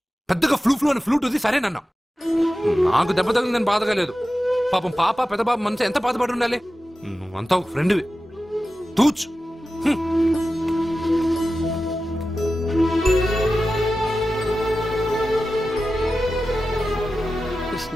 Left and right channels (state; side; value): normal; both; correlation 0.94